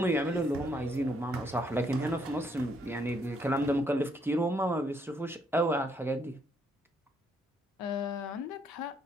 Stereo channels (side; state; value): both; normal; correlation 0.71